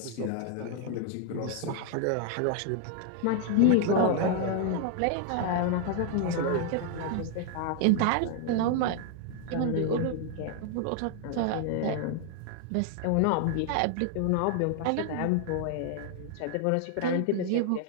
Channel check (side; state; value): both; different; correlation 0.00